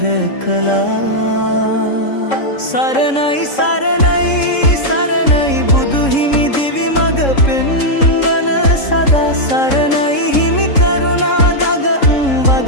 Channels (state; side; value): late; right; 3.7 ms